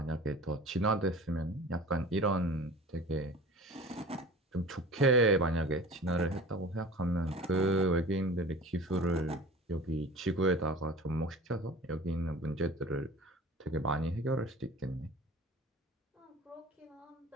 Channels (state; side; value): normal; both; correlation 0.40